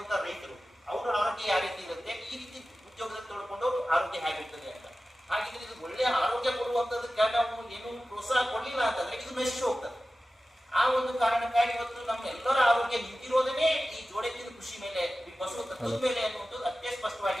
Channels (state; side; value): normal; both; correlation 0.95